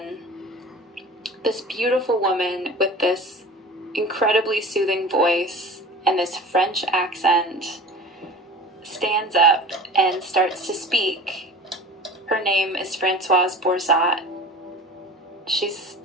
this beautiful woman with this incredibly soothing voice and this French accent stands up and starts to speak. Her name is Françoise Borzat. She's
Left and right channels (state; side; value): normal; both; correlation 0.38